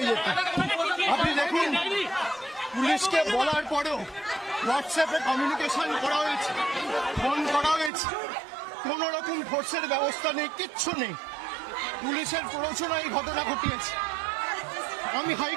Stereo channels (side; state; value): left; drops out; at 7.9 s